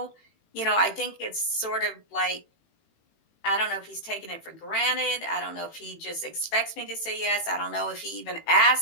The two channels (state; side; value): late; right; 18 ms